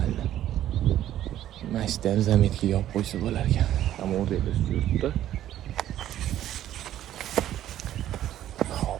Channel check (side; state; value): left; quieter; 12.3 dB